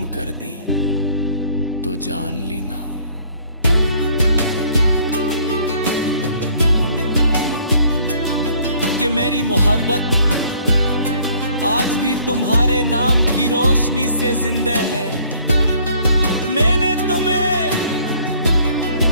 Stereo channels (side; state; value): both; inverted; correlation -0.59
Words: कर दी, तो जान लेना कि मेरी मोहब्बत आज भी तुम्हारे नाम की रोशनी से जिंदा है। मैंने तुम्हें